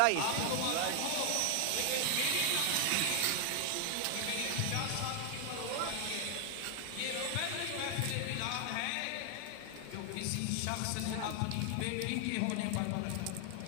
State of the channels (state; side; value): different; both; correlation 0.00